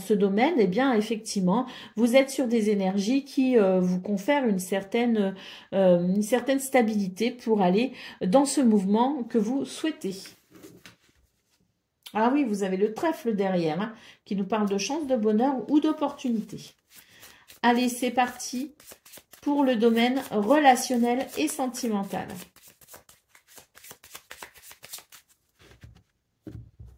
domaine, eh bien, effectivement, vous êtes sur des énergies qui vous confèrent une certaine stabilité pour aller dans ce mouvement que vous souhaitez. Ah oui, vous avez le trèfle derrière, hein, qui nous parle de chance, de bonheur ou d'opportunité. Allez, c'est parti pour le domaine relationnel et sentimental.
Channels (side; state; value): both; identical; correlation 1.00